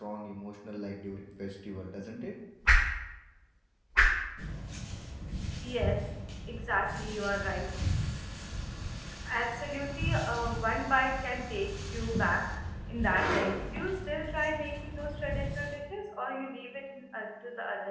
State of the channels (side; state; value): both; identical; correlation 1.00